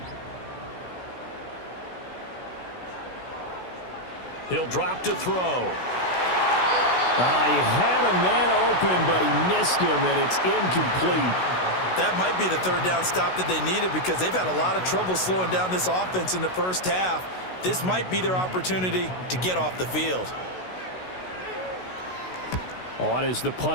He'll drop to throw. He had a man open, but he missed him, and it's incomplete. That might be the third down stop that they needed because they've had a lot of trouble slowing down this offense in the first half. This might be their opportunity to get off the field. On is the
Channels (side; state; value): right; late; 16 ms